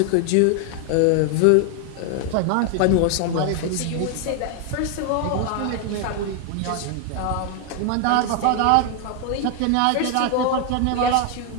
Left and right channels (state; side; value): different; both; correlation 0.01